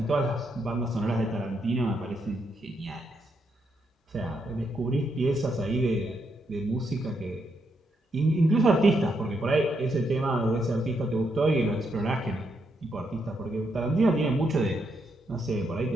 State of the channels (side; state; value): both; normal; correlation 0.79